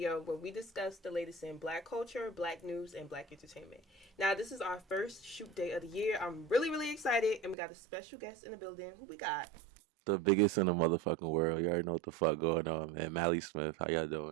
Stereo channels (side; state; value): left; drops out; at 7.6 s